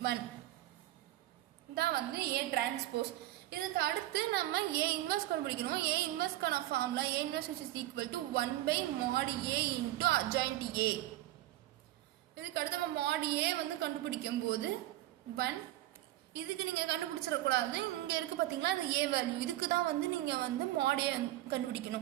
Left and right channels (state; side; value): quieter; left; 15.4 dB